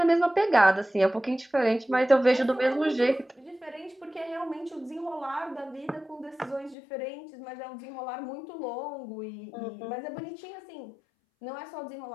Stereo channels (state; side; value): drops out; right; at 6.8 s